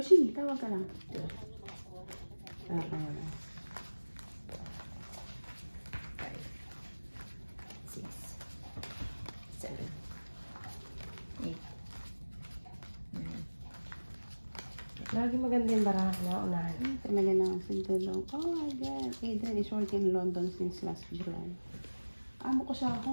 tawag ka lang. Ah, kaya na. 5, 6, 7, 8, 9. Lagi maganda yung baraha na unahan. Talaga na ang sintulong. Oh my God. Adrian is working in London since last July. Amo ko sa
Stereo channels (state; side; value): inverted; both; correlation -1.00